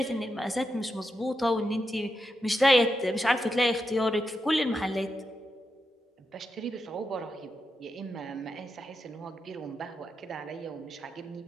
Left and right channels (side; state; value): both; normal; correlation 0.86